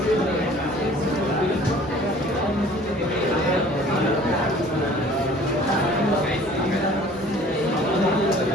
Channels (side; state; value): both; normal; correlation 0.50